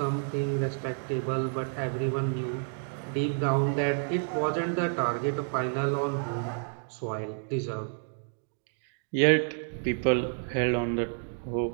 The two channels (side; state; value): left; silent; 58 dB below the other